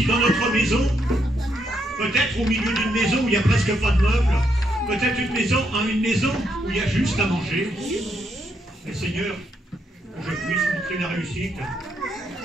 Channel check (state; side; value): normal; both; correlation 0.77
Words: dans notre maison. Peut-être au milieu d'une maison où il n'y a presque pas de meubles. Peut-être une maison où il y a juste à manger. Mais Seigneur, que je puisse montrer la réussite.